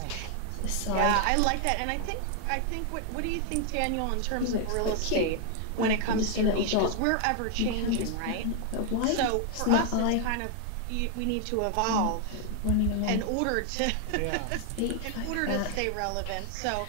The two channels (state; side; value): different; both; correlation 0.00